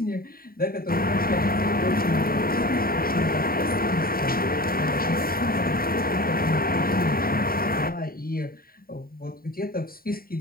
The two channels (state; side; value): late; right; 0.43 ms